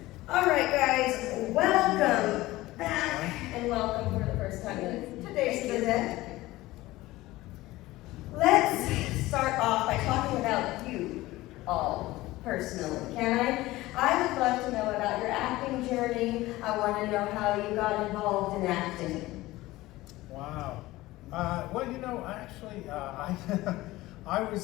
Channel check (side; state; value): right; quieter; 18.1 dB